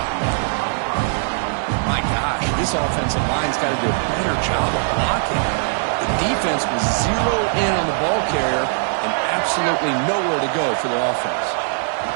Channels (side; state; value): left; silent; digital silence